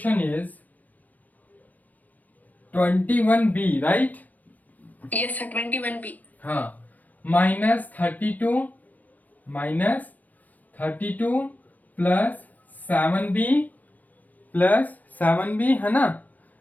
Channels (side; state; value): right; late; 0.080 ms